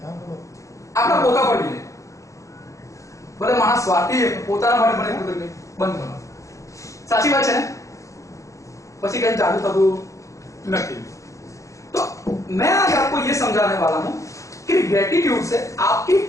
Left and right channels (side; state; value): right; late; 0.15 ms